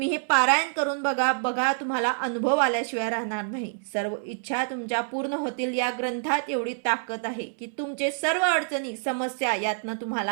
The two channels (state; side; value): silent; left; 60 dB below the other